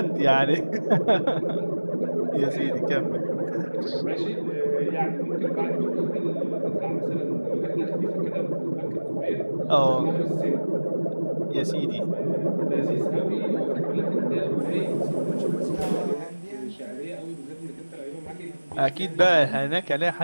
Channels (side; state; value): both; inverted; correlation -1.00